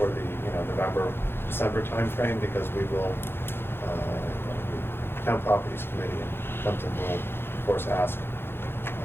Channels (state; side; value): late; right; 0.11 ms